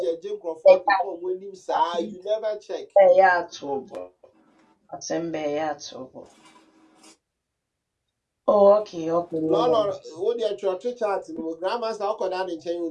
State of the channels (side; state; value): both; identical; correlation 1.00